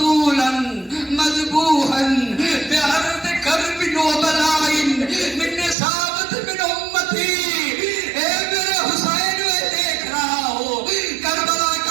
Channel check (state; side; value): drops out; left; at 5.8 s